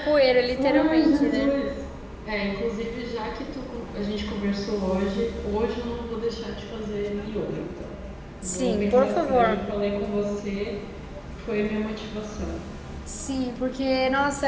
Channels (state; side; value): identical; both; correlation 1.00